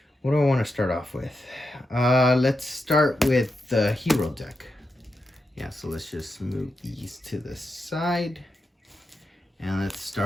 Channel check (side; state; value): both; normal; correlation 0.87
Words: what do I want to start off with? Let's start with the hero deck. Yeah, so let's just move these to the side. And let's